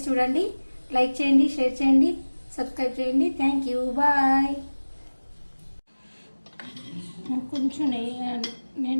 చూడండి. లైక్ చేయండి, షేర్ చేయండి, సబ్స్క్రైబ్ చేయండి. Thank you, bye. కొంచెం నెయ్యి,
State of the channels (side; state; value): both; inverted; correlation -1.00